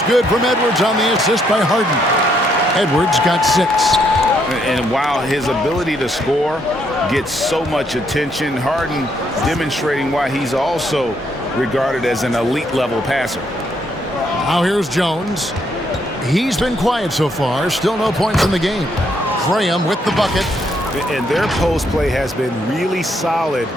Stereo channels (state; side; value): normal; both; correlation 0.73